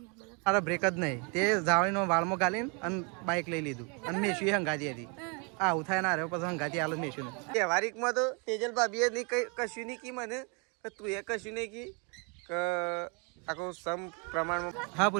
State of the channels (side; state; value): left; quieter; 33.6 dB